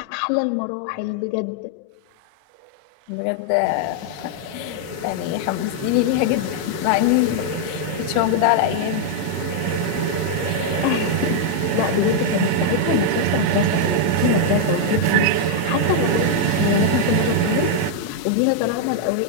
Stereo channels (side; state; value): both; different; correlation 0.00